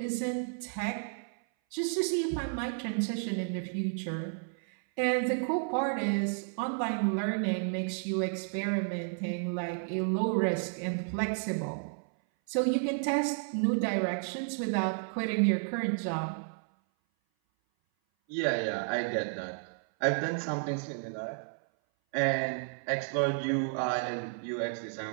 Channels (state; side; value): silent; left; 56 dB below the other